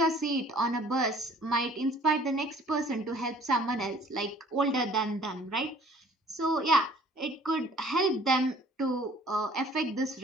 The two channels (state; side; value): normal; both; correlation 0.54